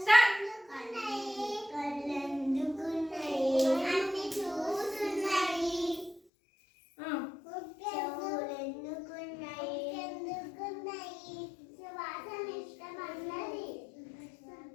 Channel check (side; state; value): right; drops out; at 6.2 s